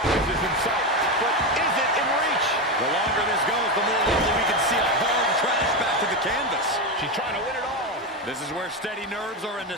is in sight, but is it in reach? The longer this goes, the more likely we can see a hard crash back to the canvas. She's trying to win it all. This is where steady nerves are a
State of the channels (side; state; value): both; normal; correlation 0.13